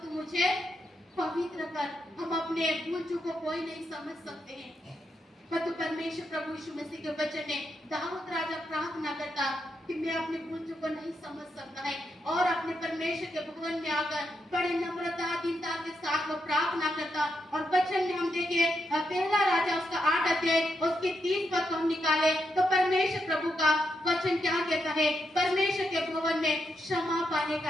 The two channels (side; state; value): both; normal; correlation 0.83